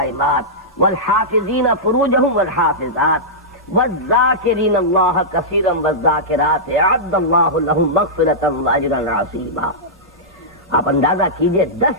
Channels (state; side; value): normal; both; correlation -0.13